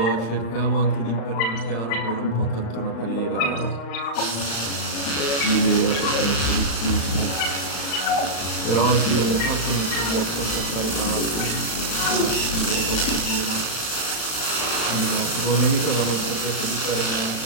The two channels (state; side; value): late; right; 35 ms